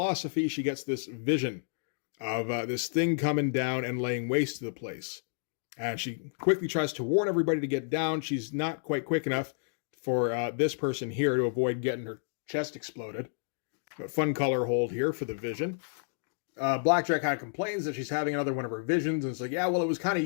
she gets this vision of this thing coming down and laying waste to the place. And she quickly tries to warn everybody to get down. She's not quite quick enough for this person here to avoid getting her chest exploded. But fun color hold here for the vision. Blackjack kind of complains that she's having another one of her visions. And it's like, yeah, well, it was kind of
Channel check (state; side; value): silent; right; digital silence